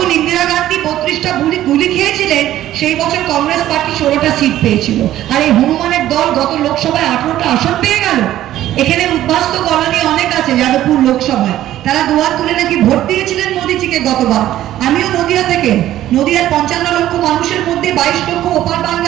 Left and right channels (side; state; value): left; quieter; 13.3 dB